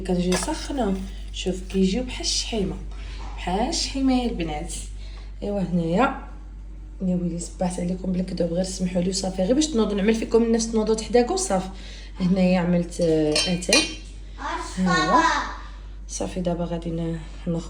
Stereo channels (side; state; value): both; identical; correlation 1.00